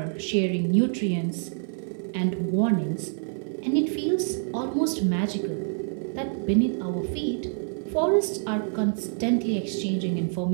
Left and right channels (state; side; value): silent; left; 60 dB below the other